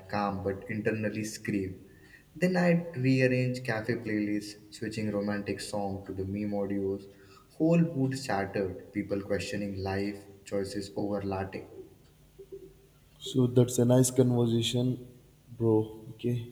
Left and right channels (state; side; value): identical; both; correlation 1.00